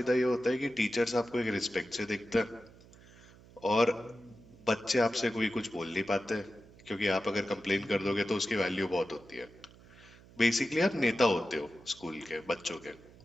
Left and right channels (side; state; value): right; noise; hum, 23 dB below the sound